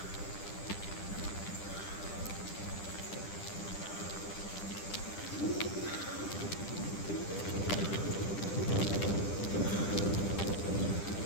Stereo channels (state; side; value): late; right; 10 ms